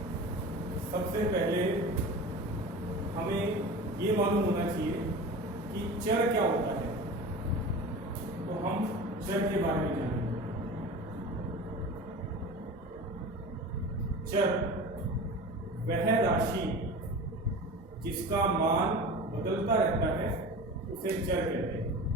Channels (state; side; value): normal; both; correlation 0.33